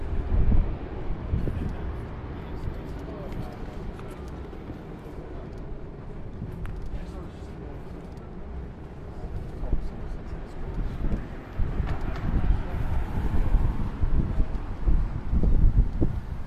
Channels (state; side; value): identical; both; correlation 1.00